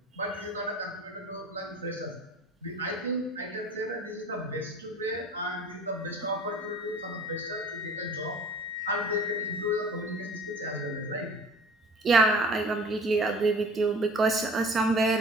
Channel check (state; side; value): normal; both; correlation 0.44